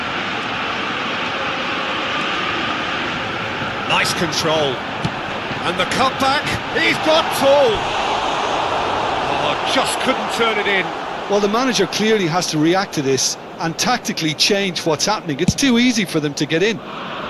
Nice control. And the cutback, he's got tall. Oh, just couldn't turn it in. Well, the manager clearly has to react to this and tactically change what's happening. It's too easy for them to get in.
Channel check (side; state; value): both; identical; correlation 1.00